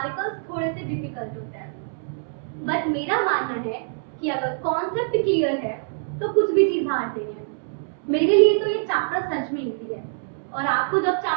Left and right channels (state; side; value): silent; left; 62 dB below the other